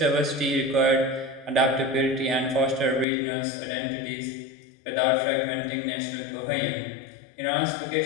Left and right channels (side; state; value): right; drops out; at 3.1 s